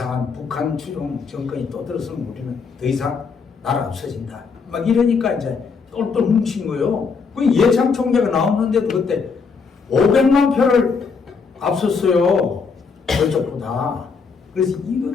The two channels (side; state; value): right; quieter; 5.2 dB